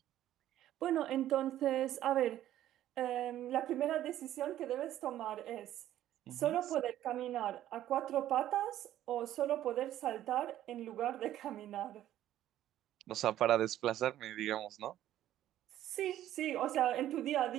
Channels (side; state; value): left; quieter; 12.7 dB